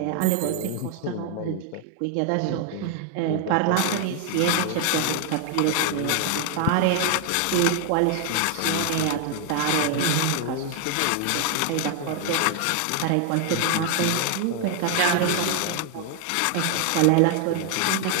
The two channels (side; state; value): both; different; correlation 0.00